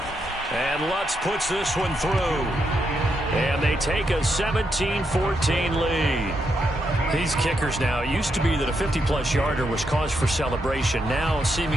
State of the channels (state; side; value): normal; both; correlation 0.81